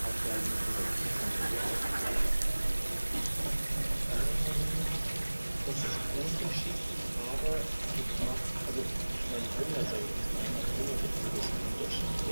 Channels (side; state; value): both; inverted; correlation -1.00